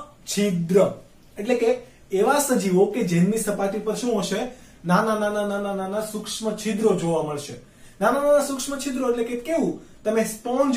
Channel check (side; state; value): both; identical; correlation 1.00